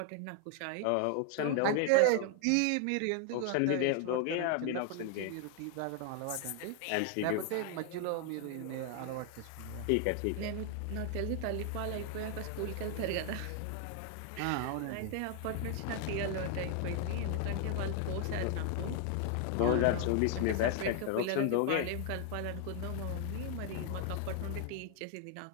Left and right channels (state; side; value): different; both; correlation 0.00